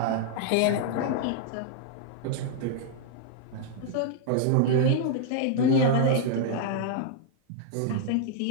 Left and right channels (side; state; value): both; different; correlation -0.01